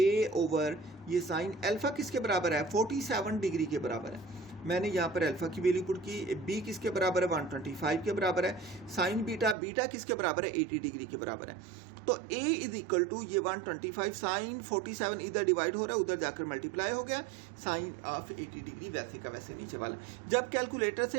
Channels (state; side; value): drops out; left; at 9.6 s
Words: ओवर ये साइन अल्फा किसके बराबर है 47 डिग्री के बराबर है। मैंने यहाँ पर अल्फा की वैल्यू पुट की, बी किसके बराबर है 125 के बराबर है, साइन बीटा, बीटा किसके बराबर है 80 डिग्री के बराबर है। तो ए इज इक्वल टू ये 125 साइन 47 इधर डिवाइड हो रहा है, उधर जाकर मल्टीप्लाई हो गया, साइन ऑफ 80 डिग्री वैसे का वैसे नीचे वाला। जब कैलकुलेटर से